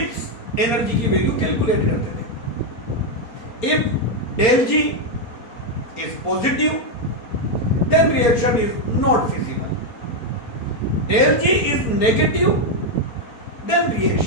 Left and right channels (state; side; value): late; right; 4.3 ms